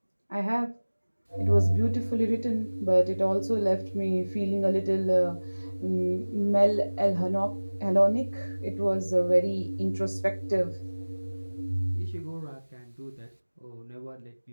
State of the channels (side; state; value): both; inverted; correlation -1.00